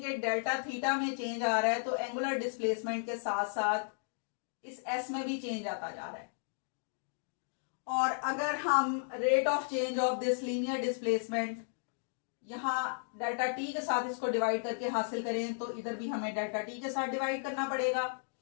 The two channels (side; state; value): right; silent; digital silence